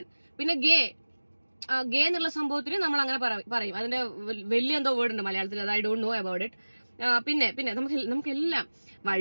പിന്നെ ഗേ എന്നുള്ള സംഭവത്തിന് നമ്മൾ അങ്ങനെ പറയും. അതിന്റെ വലിയ എന്തോ വേർഡ് ഉണ്ട് മലയാളത്തിൽ, അത് I don't know about it. പിന്നെ നമുക്കെല്ലാം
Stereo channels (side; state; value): both; inverted; correlation -1.00